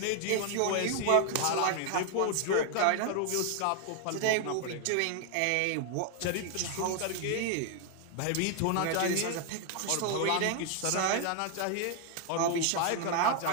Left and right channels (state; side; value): different; both; correlation 0.00